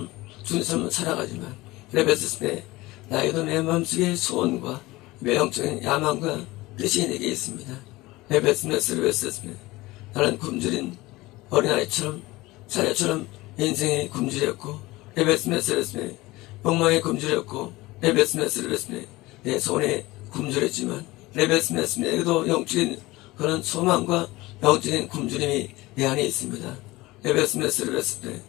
주님처럼 살아가지만 레베스스메 나에게도 내 마음속에 소원과 매형적인 야망과 뜻이 내게 있습니다. 레베스메스메 나는 굶주린 어린아이처럼 사자처럼 인생에 굶주렸고 레베스메스메 욕망에 굶주렸고 레베스메스메 내 손에 굶주렸지만 레베스메스메에게도 영적인 그런 소망과 영적인 굶주림이 내 안에 있습니다. 레베스메스메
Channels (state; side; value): quieter; right; 20.0 dB